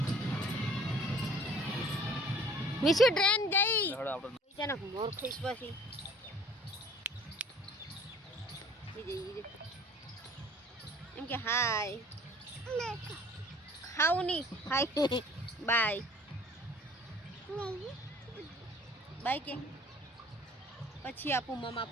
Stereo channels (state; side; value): normal; both; correlation 0.52